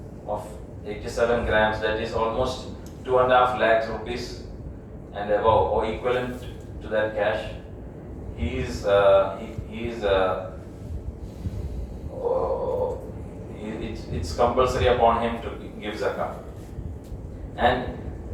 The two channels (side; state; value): both; identical; correlation 1.00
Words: of 87 grams, that is almost 2.5 lakhs rupees and above, or equivalent to that cash, it's compulsory upon him to give zakah. And